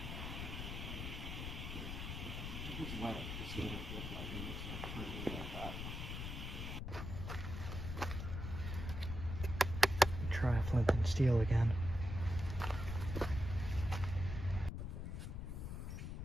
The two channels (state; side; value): noise; left; rumble, 5 dB below the sound